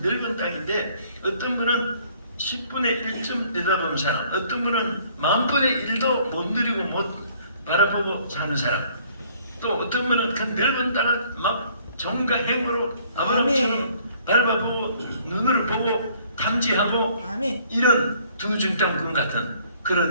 넓은 땅인데 어떤 분은 10분의 1쯤 내다보는 사람, 어떤 분은 10,000분의 1도 못 누리고 못 바라보고 사는 사람, 또 어떤 분은 그 넓은 땅을 막 정과 행으로 아브라함처럼 밟아보고 눈으로 보고 탐지하고 이런 두 중땅군 같은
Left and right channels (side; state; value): both; inverted; correlation -0.61